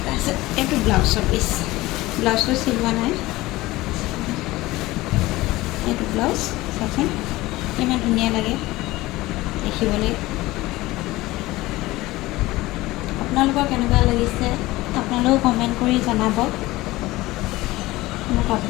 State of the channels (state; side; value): quieter; right; 18.9 dB